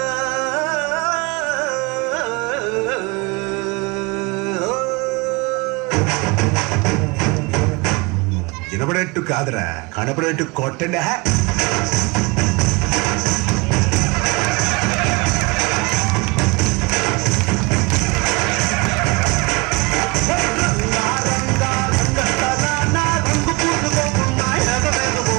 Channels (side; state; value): left; quieter; 26.9 dB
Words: వినపడేట్టు కాదురా, కనపడేట్టు కొట్టండి.